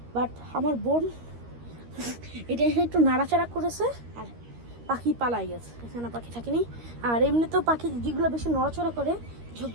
বাট আমার বোন এটা একটু নাড়াচাড়া করেছে আর পাখি পালাই গেছে, এখানে পাখি থাকেনি। আর এমনিতেও পাখি যেগুলো বেশি নড়াচড়া করে সব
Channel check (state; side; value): late; left; 13 ms